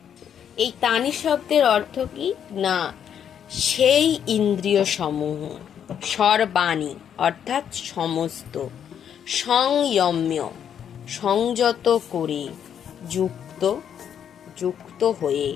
এই তানি শব্দের অর্থ কি না সেই ইন্দ্রিয় সমূহ, সর্বাণি অর্থাৎ সমস্ত, সংযম্য সংযত করে, যুক্ত হয়ে,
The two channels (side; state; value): right; quieter; 8.7 dB